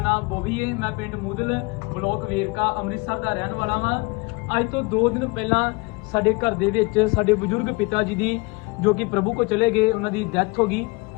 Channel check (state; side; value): quieter; right; 27.0 dB